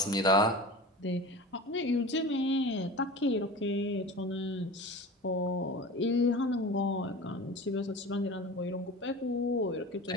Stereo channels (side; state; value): both; normal; correlation 0.34